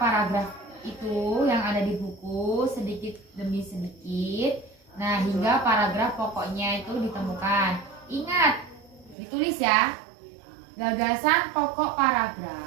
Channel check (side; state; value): left; drops out; at 9.2 s